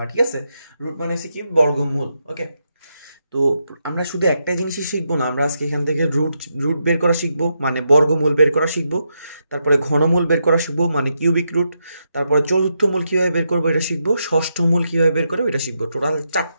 ঠিক আছে, রুট মানে হচ্ছে কি বর্গমূল। ওকে, তো আমরা শুধু একটাই জিনিসই শিখবো না, আমরা আজকে এখান থেকে রুট রুট বের করা শিখবো, মানে বর্গমূল বের করা শিখবো। তারপরে ঘনমূল বের করা শিখবো, মানে কিউবিক রুট। তারপরে চতুর্থ মূল কীভাবে বের করবো এটা শিখবো, ষষ্ঠ মূল কীভাবে বের করবো এটা শিখবো। টোটাল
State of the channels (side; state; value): both; inverted; correlation -0.83